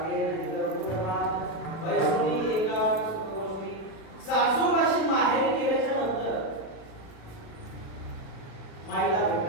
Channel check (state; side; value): late; right; 37 ms